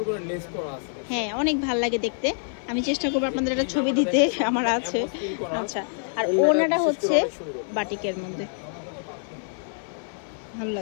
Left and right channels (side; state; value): right; silent; 56 dB below the other